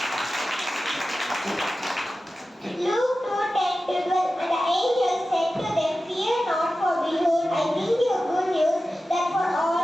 Luke 2:10-12. And the angel said to them, Fear not, for behold, I bring you good news that for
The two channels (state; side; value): normal; both; correlation 0.94